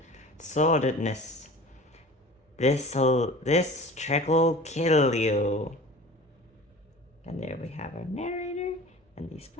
sordidness. This trick'll kill you. And there we have our narrator and the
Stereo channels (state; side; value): normal; both; correlation 0.40